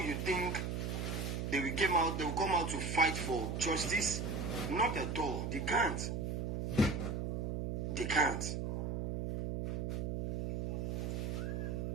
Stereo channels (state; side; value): noise; right; hum, 1 dB below the sound